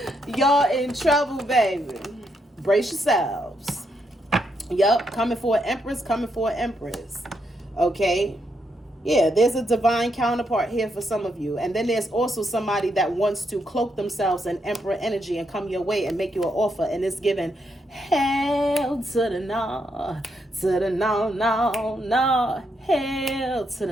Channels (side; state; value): both; normal; correlation 0.79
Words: Y'all in trouble, baby. Brace yourselves. Yup, coming for an empress, coming for an empress. Okay? Yeah, there's a divine counterpart here for some of you. And then there's also somebody that wants to cloak themselves in emperor energy and come your way and make you an offer. And it's given hell to the no, to the no, no, no, hell to